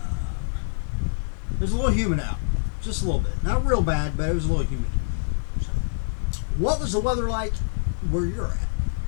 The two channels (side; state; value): right; silent; 59 dB below the other